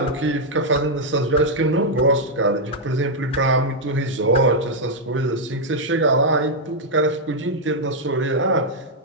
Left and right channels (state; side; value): normal; both; correlation -0.03